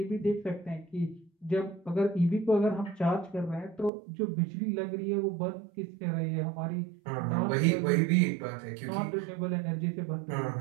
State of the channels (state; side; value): drops out; left; at 3.9 s